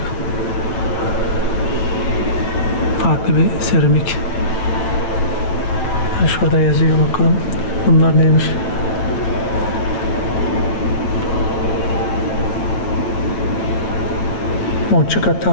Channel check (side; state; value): right; late; 9.3 ms